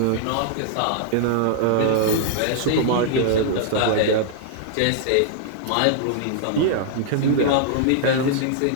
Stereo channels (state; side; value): different; both; correlation -0.01